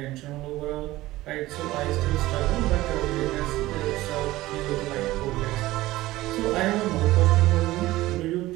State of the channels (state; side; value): quieter; left; 17.3 dB